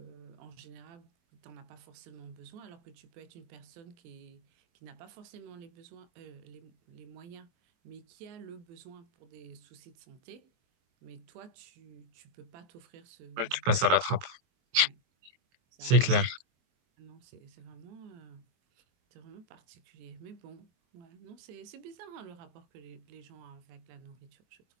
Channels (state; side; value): late; left; 23 ms